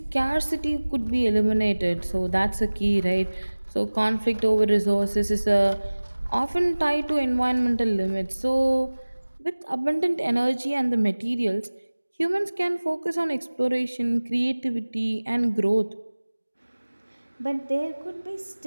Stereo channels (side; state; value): both; inverted; correlation -1.00